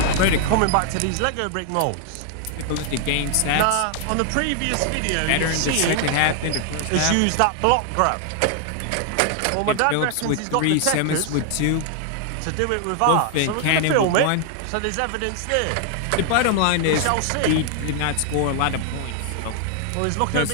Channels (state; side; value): different; both; correlation 0.00